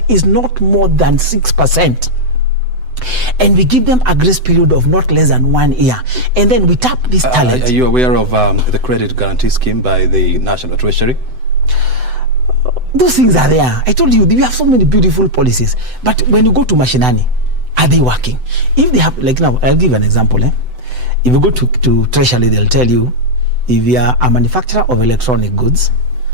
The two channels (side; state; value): left; late; 7.9 ms